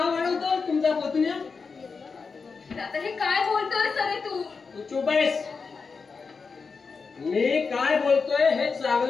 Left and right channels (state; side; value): quieter; right; 5.0 dB